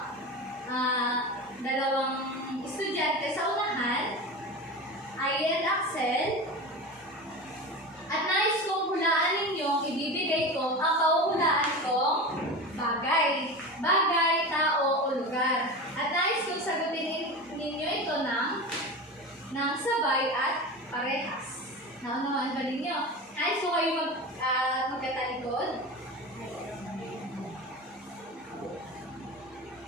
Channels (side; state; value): both; normal; correlation 0.28